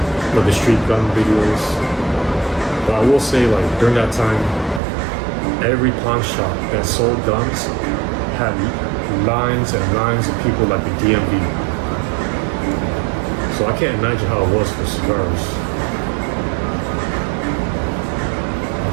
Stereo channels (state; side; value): drops out; left; at 4.8 s